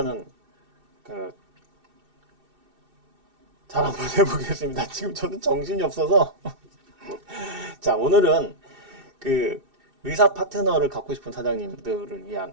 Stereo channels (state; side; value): late; left; 2.6 ms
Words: 그 잘 한번 해보겠습니다. 지금 저는 정신이 없어서. 자, 오늘은 그 의사 파트너를 갖고 싶은 사장님들을 위한